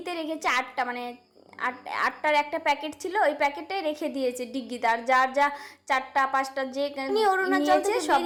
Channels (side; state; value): both; identical; correlation 1.00